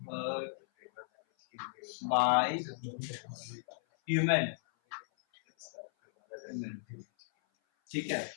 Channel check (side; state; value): right; silent; 54 dB below the other